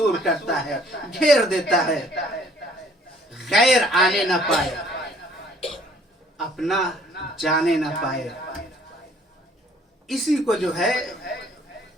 کرتا ہے، گھیر دیتا ہے. غیر آنے نہ پائے، اپنا جانے نہ پائے. اسی کو جو ہے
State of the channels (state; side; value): normal; both; correlation 0.59